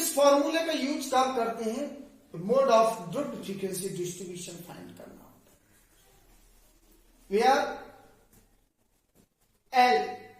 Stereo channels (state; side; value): identical; both; correlation 1.00